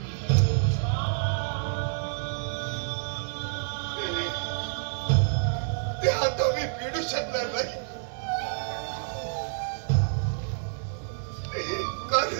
ते आता मी फेडू शकणार नाही.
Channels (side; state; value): left; silent; digital silence